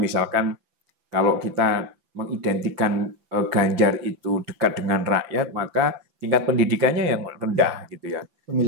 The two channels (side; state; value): left; late; 6.0 ms